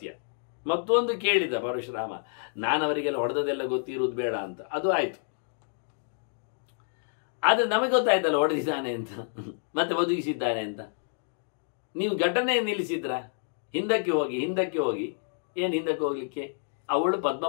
ಮತ್ತೊಂದು ಕೇಳಿದ ಪರಶುರಾಮ, ನಾನು ಅವರಿಗೆಲ್ಲ ಹೊಡೆದದೆಲ್ಲ ಗೊತ್ತಿರುವುದು ಬೇಡ ಅಂತ. ಅದು ಆಯ್ತು. ಆದರೆ ನಮಗೆ ಗೊತ್ತಾಯ್ತಲ್ಲ ಹೊಡೆದಿದ್ದಾನೆ ಅಂತ, ಮತ್ತೆ ಬದುಕಿಸಿದ್ದಾನೆ ಅಂತ. ನೀವು ಘಟನೆ ನಿಲ್ಲಿಸಿದ್ರ? ಹಿಂದಕ್ಕೆ ಹೋಗಿ ಏನು ಹಿಂದಕ್ಕೆ ಹೋಗ್ಲಿಕ್ಕೆ? ಅವಳು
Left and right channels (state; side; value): silent; right; digital silence